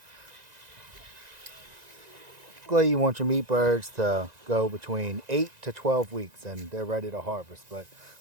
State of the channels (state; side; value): late; left; 1.9 ms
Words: Typically you want your meat birds to go between 8 to 12 weeks and they're ready to harvest. But